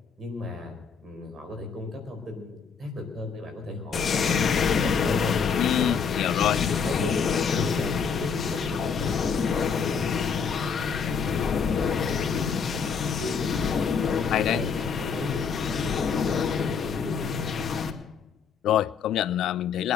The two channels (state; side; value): quieter; right; 6.2 dB